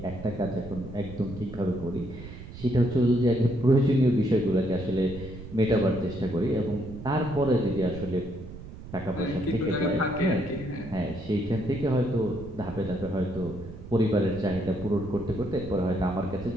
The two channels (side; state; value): right; noise; rumble, 13 dB below the sound